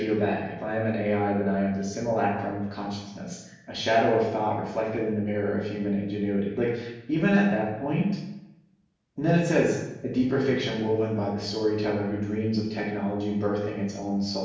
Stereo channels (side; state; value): both; identical; correlation 1.00